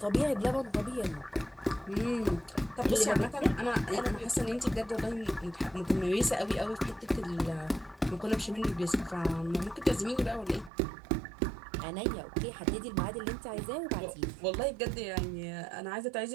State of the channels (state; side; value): drops out; left; at 10.7 s